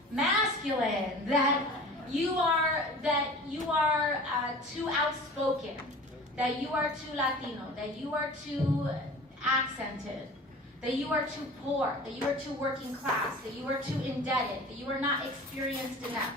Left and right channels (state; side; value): normal; both; correlation 0.40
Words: masculine, that you are too outspoken, that you are too Latino, that you are too accented, that you are too poor, that you are too working class, that you are too indebted, that you are not experienced enough.